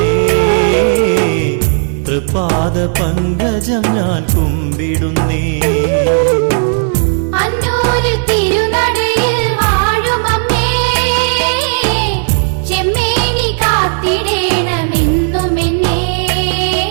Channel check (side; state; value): left; silent; digital silence